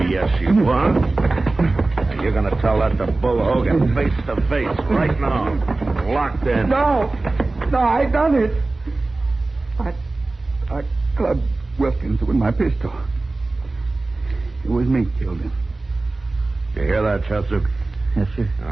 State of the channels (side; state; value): left; quieter; 3.2 dB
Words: you are. And you're going to tell that to Bull Hogan face to face right now. Locked in. No, I done it. I clubbed Wilkins with my pistol. It was me killed him. You hear that, Chester? Yes, sir. All